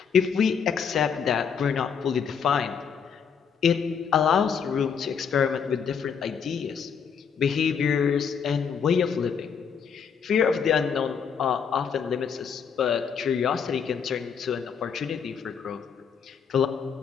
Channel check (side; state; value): right; quieter; 6.8 dB